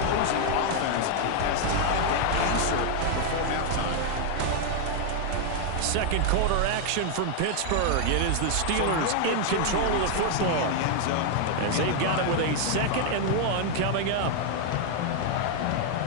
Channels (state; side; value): different; both; correlation 0.00